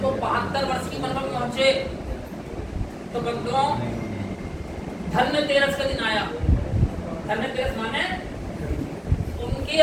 वो 72 वर्ष की उम्र में पहुंचे तो बंधुओं धन्यतेरस का दिन आया। धन्यतेरस माने उनकी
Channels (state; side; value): identical; both; correlation 1.00